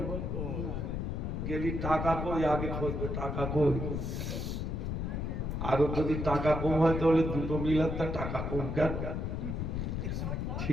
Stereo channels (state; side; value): noise; left; rumble, 2 dB below the sound